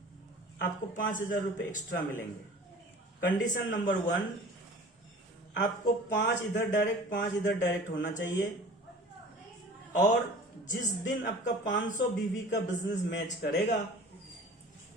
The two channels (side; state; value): both; normal; correlation 0.43